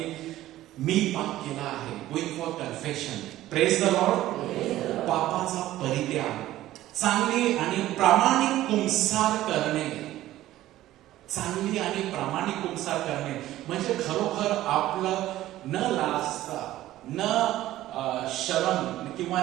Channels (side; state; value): left; quieter; 14.7 dB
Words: मी पाप केला आहे. Going for confession. Praise the lord. पापाचा परित्याग, चांगली आणि प्रामाणिक कुंसार करणे, चांगली आणि प्रामाणिक कुंसार करणे म्हणजे खरोखर आपलं न लाजता, न शरम किंवा